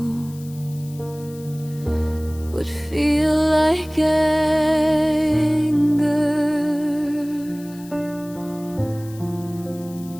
would feel like anger,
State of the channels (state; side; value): noise; left; hiss, 22 dB below the sound